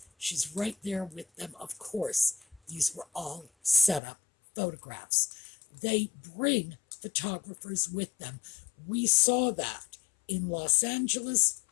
She's right there with them. Of course, these were all set up photographs. They bring photographers with them. We saw that in Los Angeles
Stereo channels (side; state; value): right; drops out; at 4.0 s